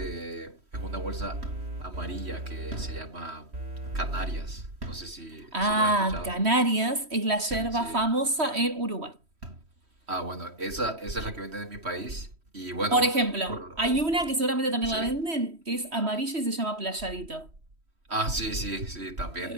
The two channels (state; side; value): late; left; 3.1 ms